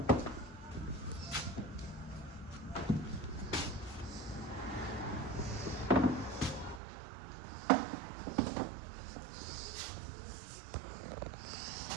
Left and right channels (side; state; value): left; drops out; at 6.8 s